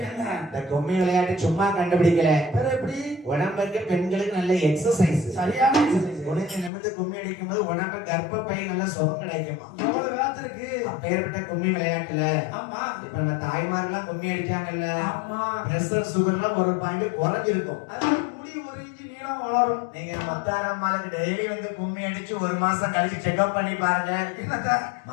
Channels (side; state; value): right; drops out; at 6.7 s